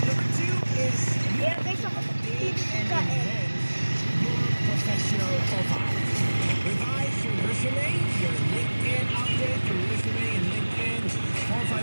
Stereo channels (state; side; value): inverted; both; correlation -1.00